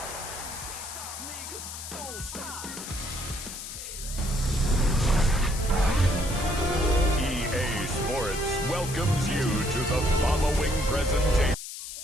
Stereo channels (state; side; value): noise; left; hiss, 9 dB below the sound